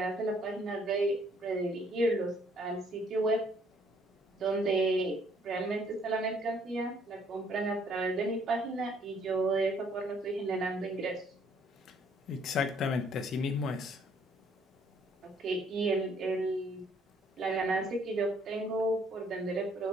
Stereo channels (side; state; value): both; normal; correlation 0.64